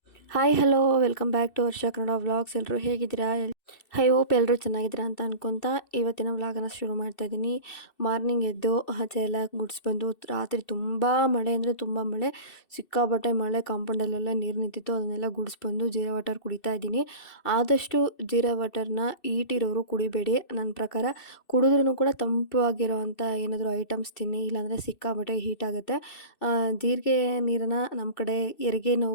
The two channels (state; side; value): late; right; 2.6 ms